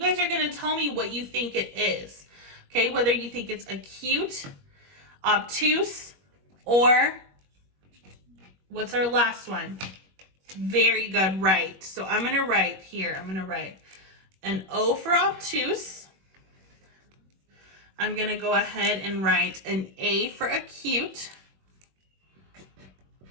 are going to tell me what you think it is. Okay, whether you think it's acute, obtuse, or what's our last one? Very good, right. So I'm going to write here, I'm going to write an O for obtuse. I'm going to go ahead and write an A for acute.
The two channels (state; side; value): late; left; 21 ms